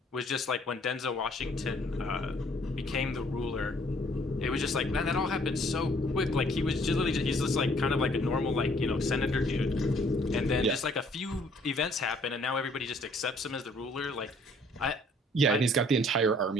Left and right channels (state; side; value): normal; both; correlation 0.61